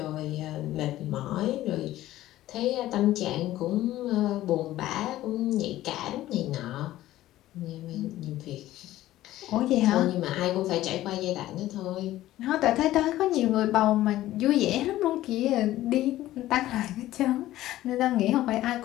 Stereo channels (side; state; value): right; quieter; 14.9 dB